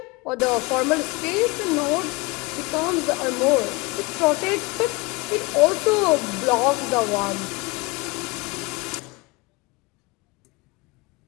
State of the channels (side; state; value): right; quieter; 25.4 dB